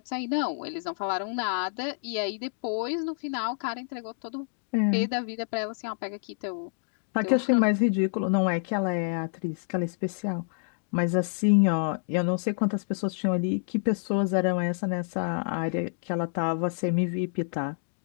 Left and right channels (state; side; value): silent; right; digital silence